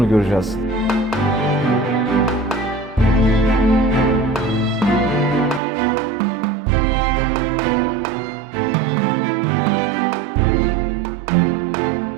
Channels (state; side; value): drops out; left; at 5.6 s